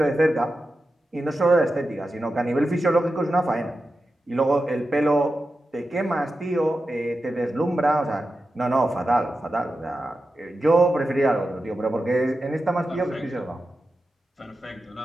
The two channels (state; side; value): normal; both; correlation 0.91